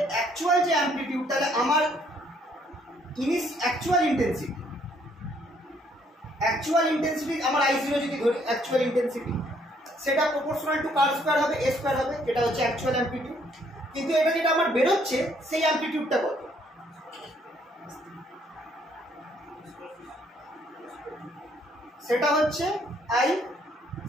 অ্যাকচুয়াল যে অ্যামপ্লিটিউড, তাহলে আমার অ্যাকচুয়াল ইন্টেন্সিটি আমার I0 যদি ধরি, অ্যাকচুয়াল ইন্টেন্সিটি সেটা প্রপোর্শনাল টু কার স্কয়ার হবে, a স্কয়ার হবে, এটা হচ্ছে অ্যাকচুয়াল অ্যামপ্লিটিউড। কিন্তু এটা যেটা আমার বেরোচ্ছে সেই অ্যামপ্লিটিউডটা কত? সেটা হচ্ছে I,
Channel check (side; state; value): both; normal; correlation 0.66